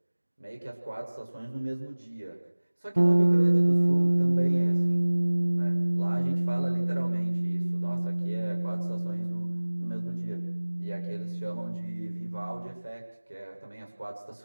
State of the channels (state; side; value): inverted; both; correlation -1.00